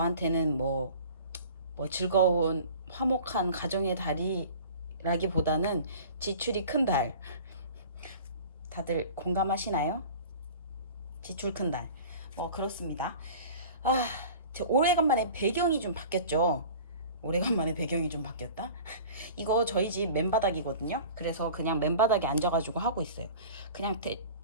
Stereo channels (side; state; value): both; inverted; correlation -0.41